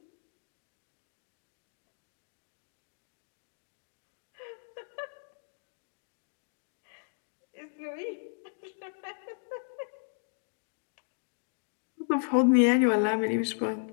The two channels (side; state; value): right; silent; digital silence